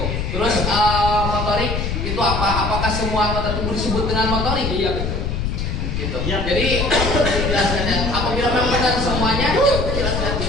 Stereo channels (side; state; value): left; noise; rumble, 2 dB below the sound